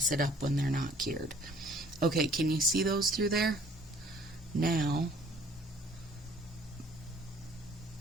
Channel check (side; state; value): both; normal; correlation 0.57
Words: it up when they're not cured. Okay, can you see those through there? Now,